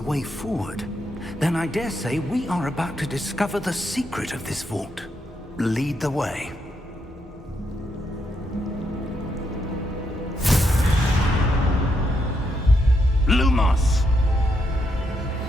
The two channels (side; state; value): both; normal; correlation 0.79